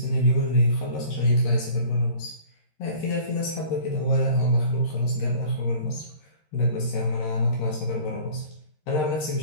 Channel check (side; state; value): right; late; 13 ms